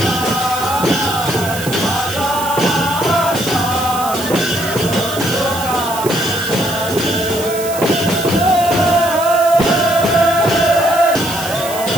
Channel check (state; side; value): noise; right; hiss, 10 dB below the sound